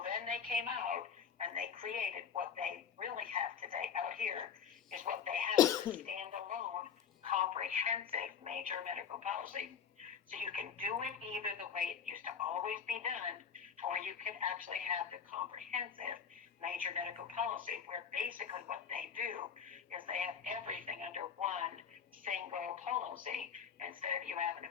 then they came out and they created what they really have today out here is what they have is a standalone comprehensive major medical policy. So you can do it either the way it used to always be done, or you can actually have the comprehensive major medical policy where basically what they do is they have everything under one single policy instead of you having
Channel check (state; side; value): quieter; right; 7.3 dB